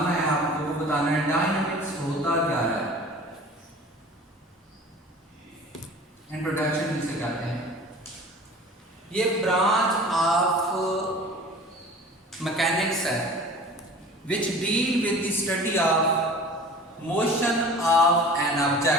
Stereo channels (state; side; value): normal; both; correlation 0.42